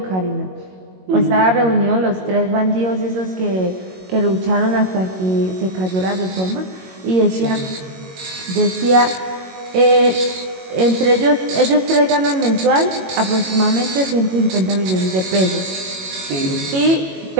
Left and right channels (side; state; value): left; late; 22 ms